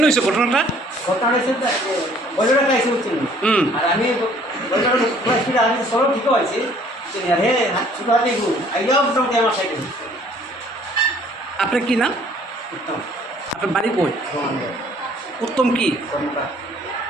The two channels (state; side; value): normal; both; correlation 0.57